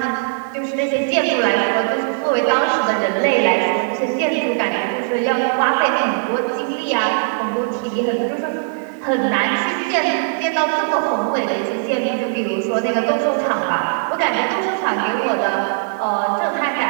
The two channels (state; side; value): silent; left; 58 dB below the other